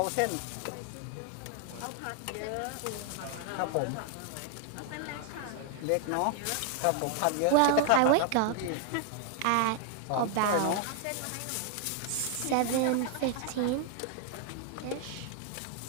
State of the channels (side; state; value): both; different; correlation 0.00